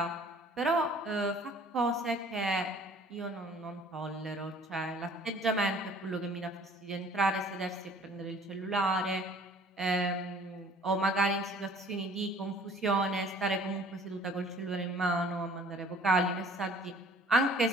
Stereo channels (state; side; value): normal; both; correlation 0.53